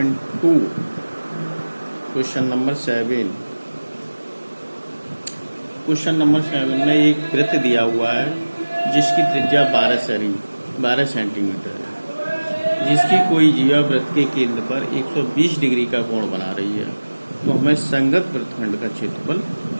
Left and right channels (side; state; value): both; inverted; correlation -1.00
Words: question number 7। Question number 7 में एक वृत्त दिया हुआ है जिसकी त्रिज्या 12 सेंटीमीटर है, जिसकी कोई जीवा वृत्त के केंद्र पर 120 डिग्री का कोण बना रही है। तो हमें संगत वृत्तखंड का क्षेत्रफल